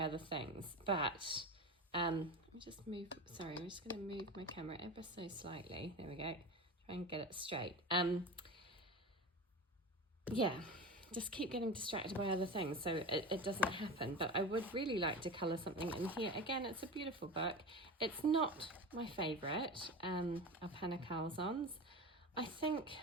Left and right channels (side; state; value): both; normal; correlation 0.28